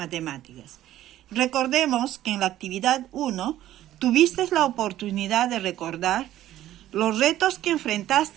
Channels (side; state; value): left; quieter; 13.4 dB